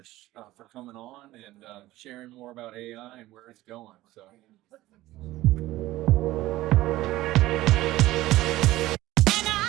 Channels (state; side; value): quieter; left; 16.6 dB